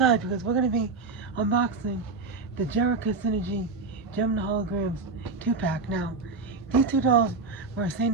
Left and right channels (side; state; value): left; quieter; 4.1 dB